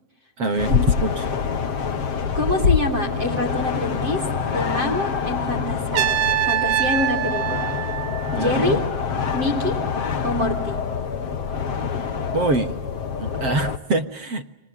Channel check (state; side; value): late; left; 7.6 ms